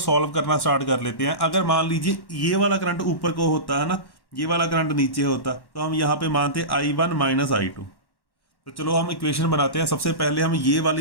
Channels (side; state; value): right; late; 1.1 ms